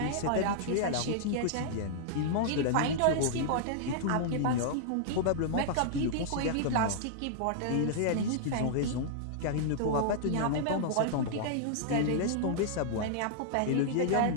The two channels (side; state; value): both; different; correlation -0.01